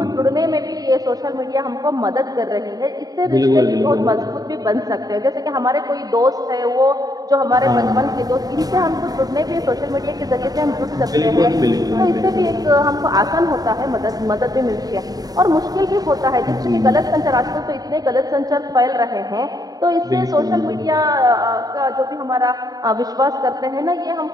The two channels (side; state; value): left; late; 0.18 ms